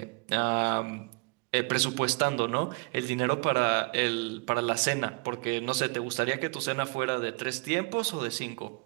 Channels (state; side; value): quieter; left; 30.0 dB